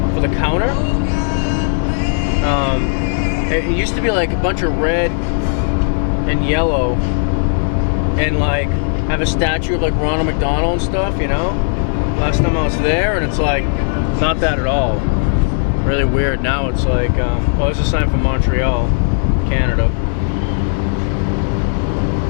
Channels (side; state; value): right; silent; digital silence